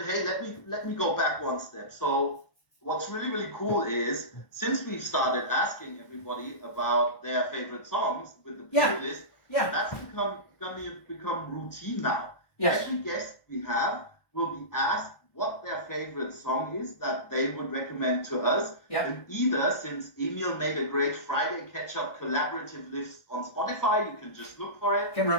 hey, let me go back one step. So what's really cool is, since we've started asking everybody about their favorite songs with the playlist, that's become routine now. Yes. Every guest we have will be asked what their favorite song is that they would recommend to us. Yep. And either, since Emil made a great Friday Ketchup collaborative list on Spotify, you can just look for it.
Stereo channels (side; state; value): right; late; 1.2 ms